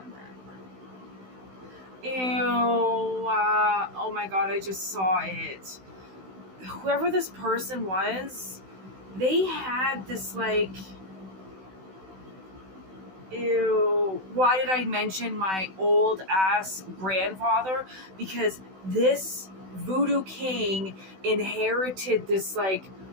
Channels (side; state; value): left; late; 16 ms